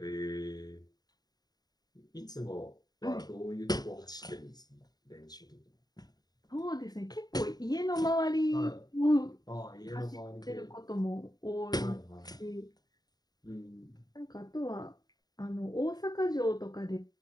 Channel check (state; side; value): late; right; 0.19 ms